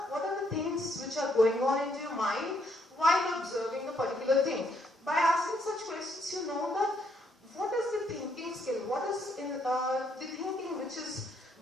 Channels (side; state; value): both; normal; correlation 0.72